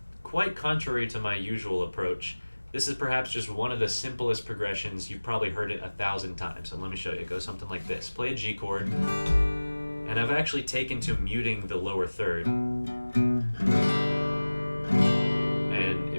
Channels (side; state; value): both; inverted; correlation -1.00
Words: quite contrary to my usual approach, this is perhaps just one of the simplest progressions. You've probably heard it 1,000 times, and let me show you. It goes something like this. Play a G chord, and I've actually taken to muting the lower third. And